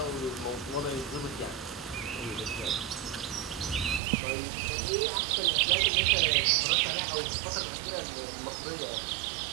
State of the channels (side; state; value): left; drops out; at 4.0 s